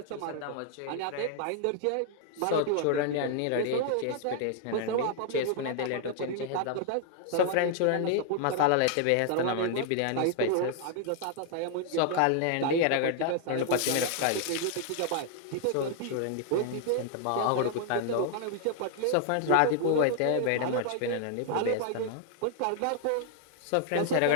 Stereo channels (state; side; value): different; both; correlation 0.00